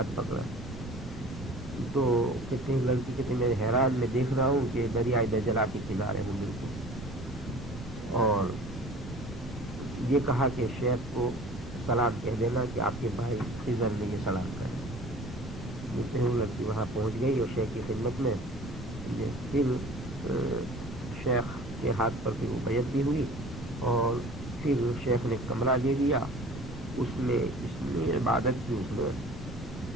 پکڑا تو کہتے ہیں لڑکی کہتے میں حیران میں دیکھ رہا ہوں کہ دریائے دجلہ کے کنارے ہوں بالکل، اور یہ کہا کہ شیخ کو سلام کہہ دینا کہ آپ کے بھائی خضر نے یہ سلام کہا۔ جس سے لڑکی وہاں پہنچ گئی اور شیخ کی خدمت میں پھر شیخ کے ہاتھ پر بھی وہ بیعت بھی ہوئی، اور پھر شیخ نے کمرہ دے دیا، اس میں اتنی عبادت کی اس میں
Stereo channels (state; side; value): noise; right; rumble, 17 dB below the sound